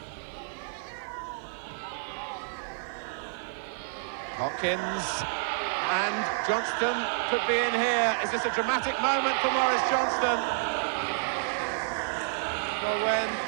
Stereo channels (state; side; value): silent; left; digital silence